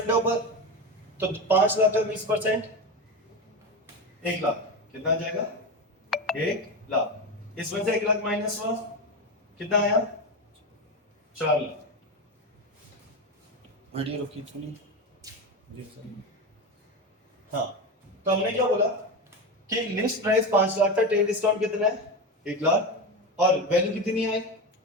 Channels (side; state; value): both; normal; correlation 0.19